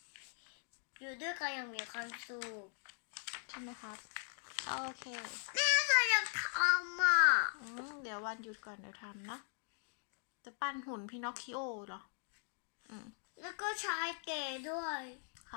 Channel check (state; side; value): silent; right; 51 dB below the other